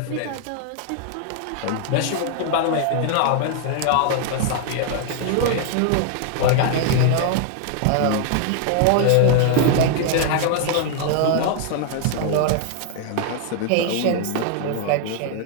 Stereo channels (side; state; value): both; different; correlation 0.00